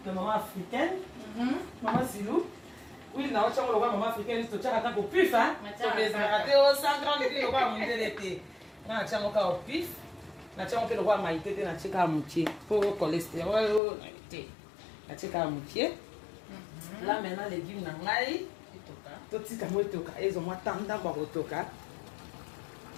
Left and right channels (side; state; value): right; drops out; at 13.8 s